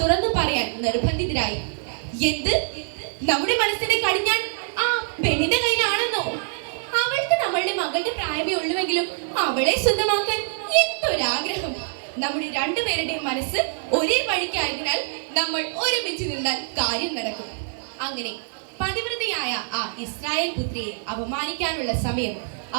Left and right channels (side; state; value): left; silent; digital silence